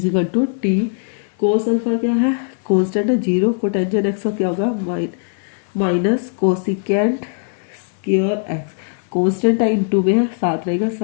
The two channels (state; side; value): silent; right; digital silence